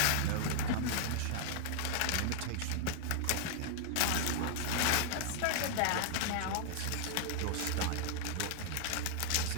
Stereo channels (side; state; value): both; different; correlation -0.01